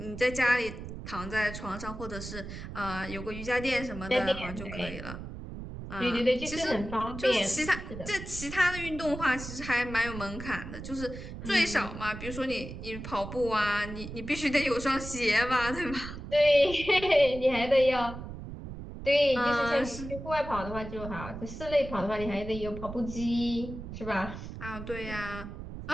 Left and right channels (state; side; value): noise; right; rumble, 10 dB below the sound